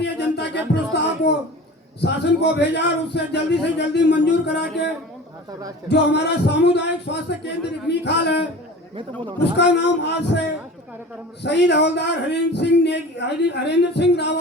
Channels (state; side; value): normal; both; correlation 0.38